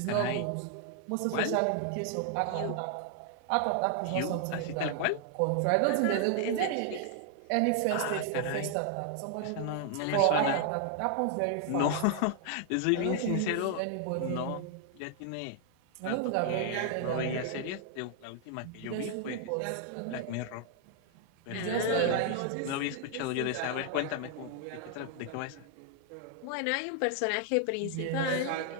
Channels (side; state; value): both; different; correlation 0.00